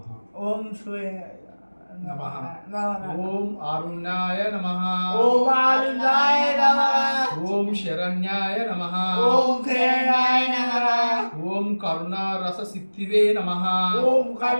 ఓం సూర్య నమః. నమః. ఓం అరుణాయ నమః. ఓం ఆరుణాయ నమః. ఓం శరణ్యాయ నమః. ఓం శరణాయ నమః. ఓం కరుణారస సిద్ధివే నమః. ఓం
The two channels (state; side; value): inverted; both; correlation -1.00